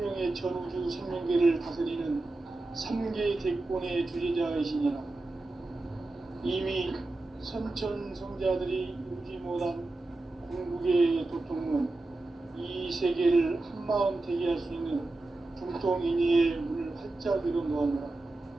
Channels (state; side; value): quieter; left; 3.0 dB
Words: 전우주 생명계를 다스리는 3개 대권의 주재자이시니라. 이미 선천성자들이 이루지 못한 궁극의 도통은 이 세계를 한마음 되게 할 수 있는 중통인의의 문을 활짝 열어놓았노라.